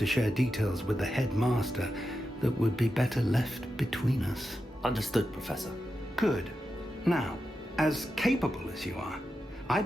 share details with the headmaster that would be better left between us. Understood, Professor. Good. Now, as capable as you are, I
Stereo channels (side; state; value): both; normal; correlation 0.89